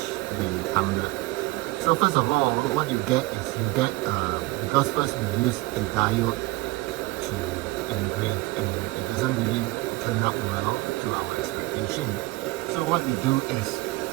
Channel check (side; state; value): left; quieter; 21.7 dB